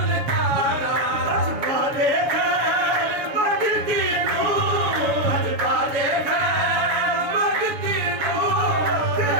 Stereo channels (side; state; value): left; late; 7.0 ms